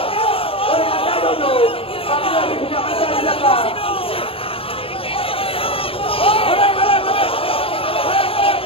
Anda duduk, kami lagi punya kerja di belakang.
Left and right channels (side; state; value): right; late; 0.27 ms